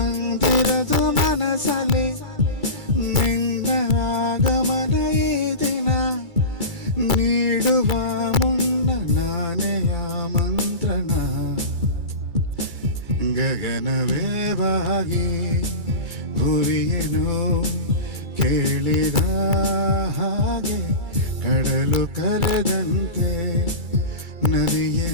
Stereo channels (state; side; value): late; left; 2.3 ms